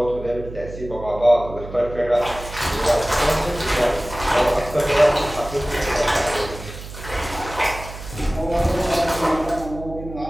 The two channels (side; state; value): right; noise; hum, 12 dB below the sound